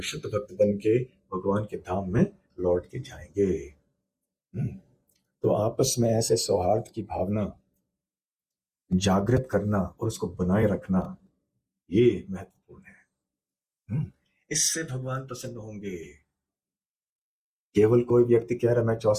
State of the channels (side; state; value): both; identical; correlation 1.00